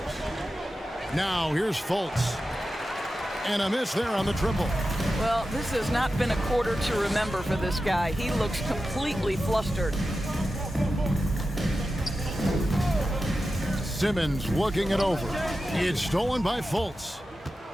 Now here's Fultz. And a miss there on the triple. Well, this has not been a quarter to remember for this guy. He looks completely flustered. Simmons looking it over. It's stolen by Fultz.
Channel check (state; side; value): normal; both; correlation 0.92